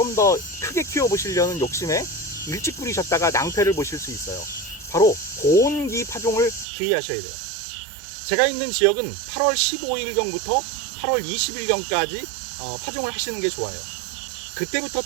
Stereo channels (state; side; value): drops out; left; at 6.7 s